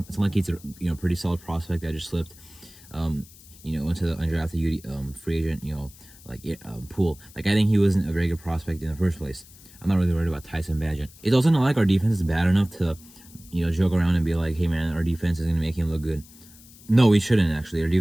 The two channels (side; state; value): left; noise; hiss, 22 dB below the sound